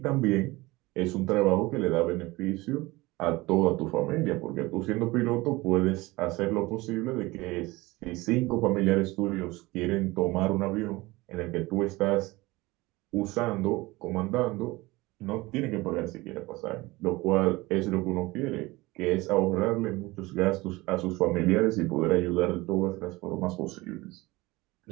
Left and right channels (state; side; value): quieter; left; 21.2 dB